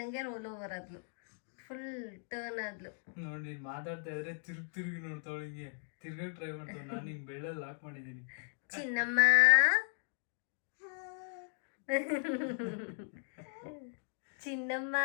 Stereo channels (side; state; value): right; silent; 53 dB below the other